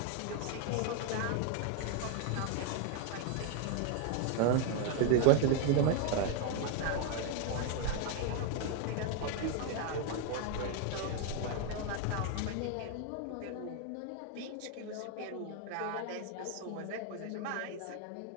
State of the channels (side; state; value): both; different; correlation 0.01